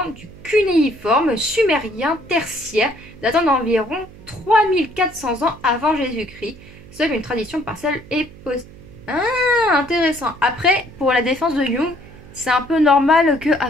du cunéiforme sumérien tertiaire datant d'environ 3400 ans avant Jésus-Christ. Seule une tradition partielle est possible. Ah, intéressant. Après, pour la défense de Jung, c'est un peu normal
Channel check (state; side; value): noise; right; hum, 20 dB below the sound